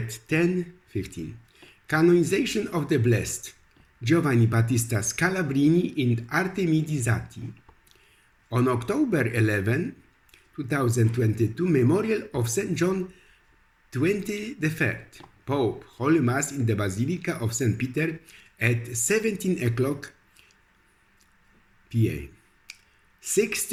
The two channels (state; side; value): identical; both; correlation 1.00